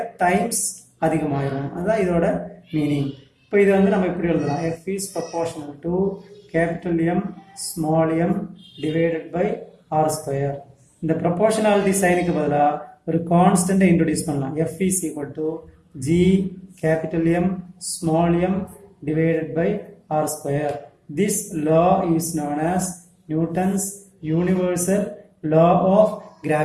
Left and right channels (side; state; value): both; identical; correlation 1.00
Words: டைம்ஸ் அதிகமாயிரும். அதுதான் இதோட மீனிங். இப்போ இது நம்ம இப்படி எழுதலாம், F is proportional to capital M small m divided by r square. இந்த ப்ரொபோர்ஷனாலிட்டி சைனுக்கு பதிலாக ஒரு கான்ஸ்டன்டை இன்ட்ரோடியூஸ் பண்ணலாம். F is equal to G capital M small m divided by r square. This law is known as Newton's universal law of